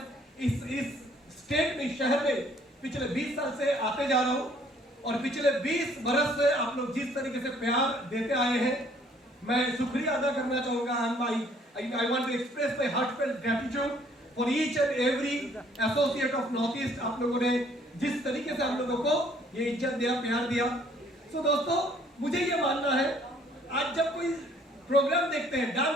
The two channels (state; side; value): normal; both; correlation 0.61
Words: इस स्टेट में, शहर में पिछले 20 साल से आते जा रहा हूं, और पिछले 20 बरस से आप लोग जिस तरीके से प्यार देते आए हैं, मैं शुक्रिया अदा करना चाहूंगा। I want to express my heartfelt gratitude for each and every associate of North East। आप लोगों ने जिस तरीके से हम लोगों को ये इज्जत दिया, प्यार दिया। So दोस्तों, मुझे ये मानना है, आज जब कोई प्रोग्राम देखते हैं,